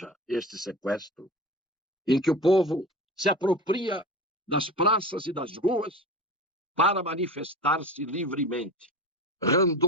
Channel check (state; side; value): normal; both; correlation 0.31